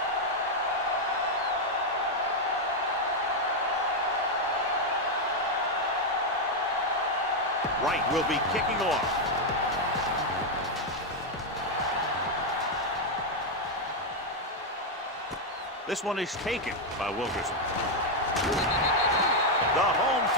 Wright will be kicking off. This one is taken by Wilkerson. The home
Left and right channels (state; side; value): normal; both; correlation 0.01